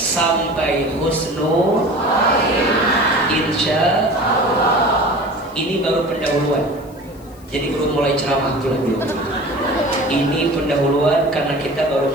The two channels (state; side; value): noise; left; hiss, 27 dB below the sound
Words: husnul. Insya Allah. Ini baru pendahuluan. Jadi belum mulai ceramah belum. Ini pendahuluan karena kita baru